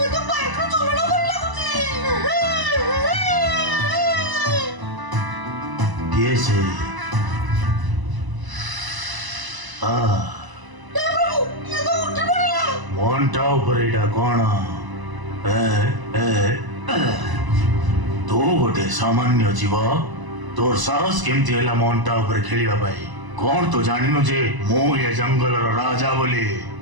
ये से मोन्टा ऊपर एटा कौन तो गोटे सामान्य जीव तोर साहस केमती हैला मोन्टा ऊपर खेलिबा पाई कौन तो जानिनो जे मो ये जंगल राजा बोली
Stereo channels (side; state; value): left; late; 1.0 ms